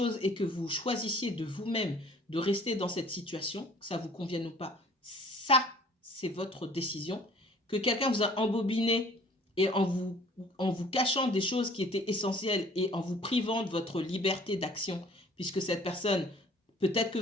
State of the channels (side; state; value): both; normal; correlation 0.53